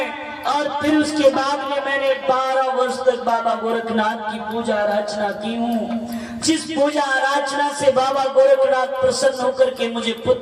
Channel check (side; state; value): both; identical; correlation 1.00